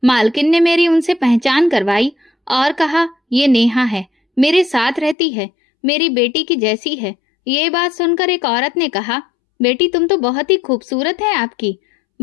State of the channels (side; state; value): right; drops out; at 5.2 s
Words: मालकिन ने मेरी उनसे पहचान करवाई और कहा, ये नेहा है, मेरे साथ रहती है, मेरी बेटी की जैसी है। ये बात सुनकर एक औरत ने कहा, बेटी तुम तो बहुत ही खूबसूरत है आपकी।